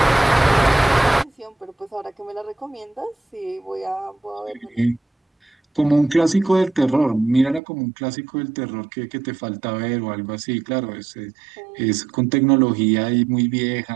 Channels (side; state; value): left; drops out; at 7.6 s